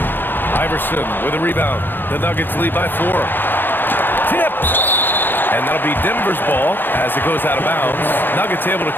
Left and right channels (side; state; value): right; late; 0.096 ms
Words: Iverson with a rebound. The Nuggets lead by 4. Tipped. And that'll be Denver's ball as it goes out of bounds. Nuggets able to